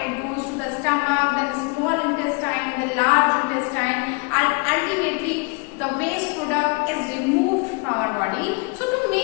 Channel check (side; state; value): right; quieter; 30.9 dB